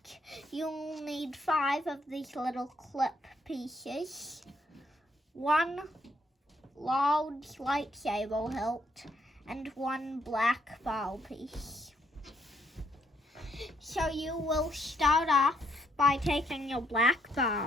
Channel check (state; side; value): normal; both; correlation 0.72